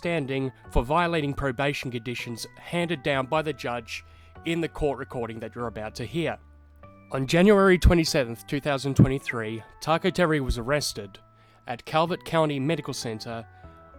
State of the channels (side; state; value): both; identical; correlation 1.00